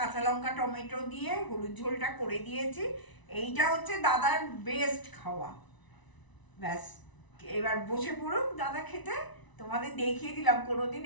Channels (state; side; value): late; right; 1.0 ms